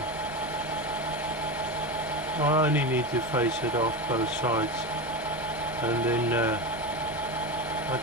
I only need to face it off both sides, and then I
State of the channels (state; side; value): normal; both; correlation 0.20